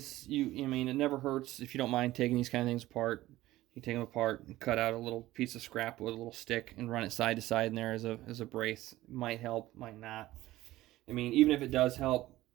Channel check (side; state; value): left; quieter; 16.4 dB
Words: it never hurts if you don't mind taking these kind of things apart. You take them apart and cut out a little piece of scrap with a little stick and run it side to side in there as a brace. Might help, might not. Even if it does help,